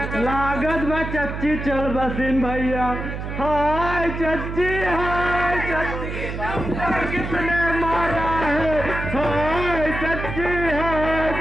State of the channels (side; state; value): right; noise; hum, 6 dB below the sound